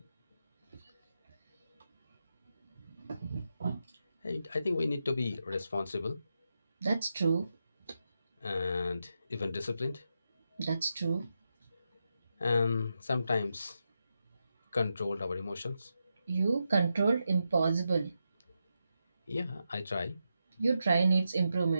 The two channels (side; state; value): both; inverted; correlation -0.87